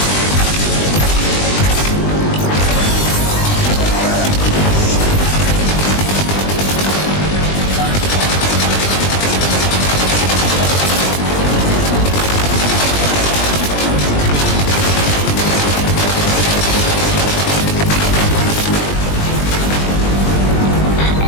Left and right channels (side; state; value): right; late; 20 ms